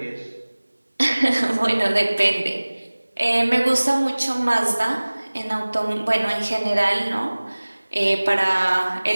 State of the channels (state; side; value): inverted; both; correlation -1.00